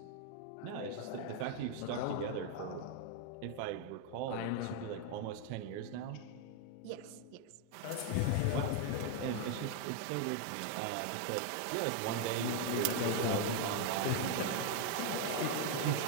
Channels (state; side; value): different; both; correlation 0.00